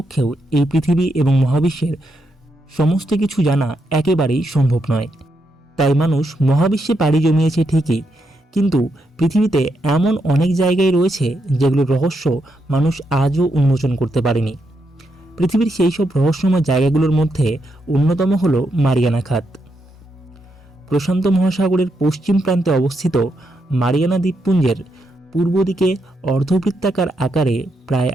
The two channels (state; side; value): normal; both; correlation 0.81